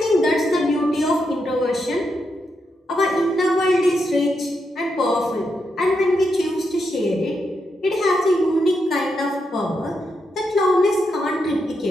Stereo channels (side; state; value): both; normal; correlation 0.83